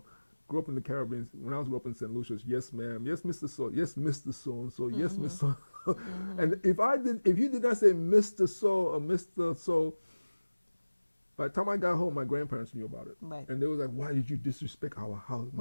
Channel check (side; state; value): both; inverted; correlation -1.00